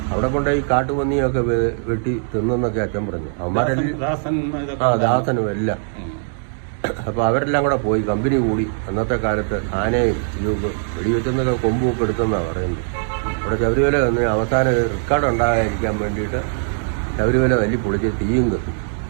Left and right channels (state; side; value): silent; left; 65 dB below the other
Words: അവിടെ കൊണ്ട് ഈ കാട്ടുപന്നിയൊക്കെ വെട്ടി തിന്നെന്നൊക്കെ അച്ഛൻ പറഞ്ഞു. അവന്മാരെല്ലാം ദാസനും എല്ലാം. അപ്പൊ അവരെല്ലാം കൂടെ പോയി കമ്പനി കൂടി. അന്നത്തെ കാലത്ത് ആനയും ഇതൊക്കെ വെടിവെച്ചെന്നൊക്കെ കൊമ്പുമൊക്കെ എടുത്തെന്നാണ് പറയുന്നത്. അവിടെ ശബരിമല വന്ന് അവസാനം റെക്കോർഡ് ഉണ്ടാകാതിരിക്കാൻ വേണ്ടിയിട്ട് ശബരിമല തല്ലി പൊളിച്ച് തീയും കത്തും.